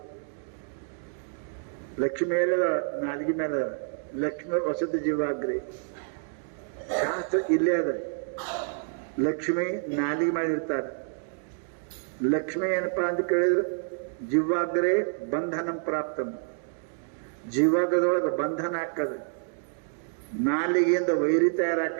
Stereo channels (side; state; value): left; silent; 59 dB below the other